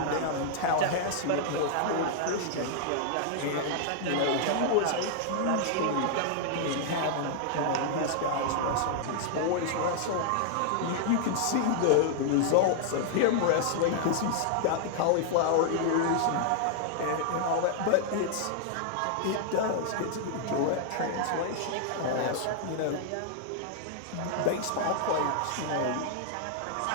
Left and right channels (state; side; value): different; both; correlation -0.01